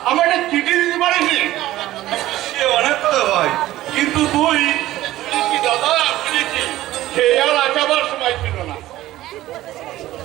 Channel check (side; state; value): left; quieter; 15.4 dB